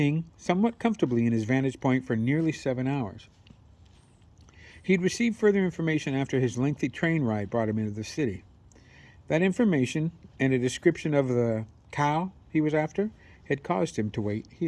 somewhat comfortably in his vantage point for nearly 7 hours. He'd received further information after his lengthy train ride brought him into the city. That information and a description of the cow he was after had caused him to wait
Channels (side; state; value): both; identical; correlation 1.00